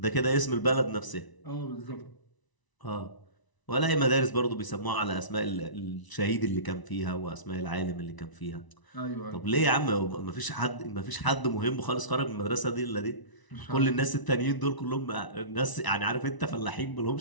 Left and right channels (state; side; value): late; right; 1.0 ms